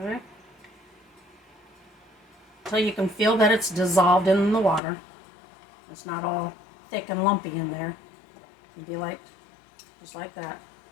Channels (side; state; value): right; drops out; at 4.8 s